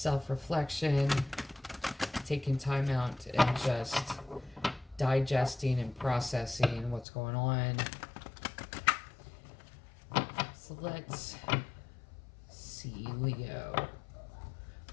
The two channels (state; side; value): drops out; right; at 7.1 s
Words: taking time out and just digesting and processing what's going on. So let's see, Leo.